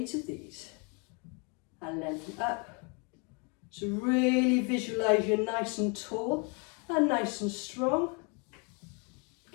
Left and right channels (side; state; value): right; quieter; 34.2 dB